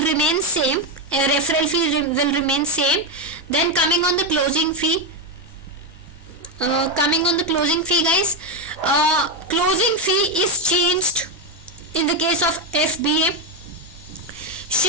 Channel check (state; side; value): normal; both; correlation 0.08